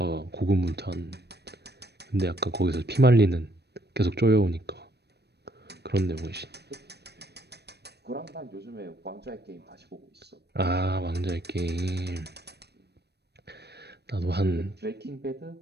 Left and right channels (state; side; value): late; left; 0.48 ms